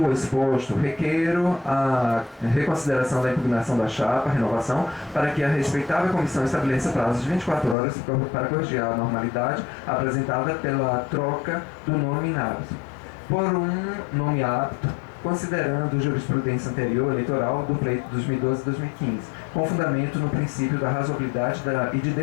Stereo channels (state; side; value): drops out; right; at 7.8 s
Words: exposto, requeiro a reconsideração da impugnação da chapa, renovação, para que a respeitável comissão estabeleça prazo de 24 horas para corrigir a anormalidade apresentada pela troca do nome inapto por um nome apto, considerando jurisprudência anterior eleitoral do pleito 2012-2015, com fundamento no princípio da razoabilidade e de